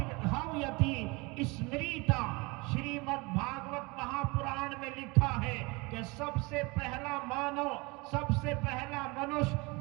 स्मृता। श्रीमद् भागवत महापुराण में लिखा है कि सबसे पहला मानव, सबसे पहला मनुष्य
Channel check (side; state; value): left; quieter; 26.0 dB